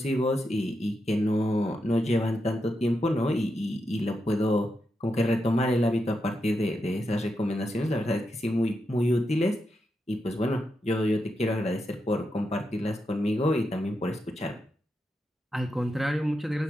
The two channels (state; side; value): normal; both; correlation 0.86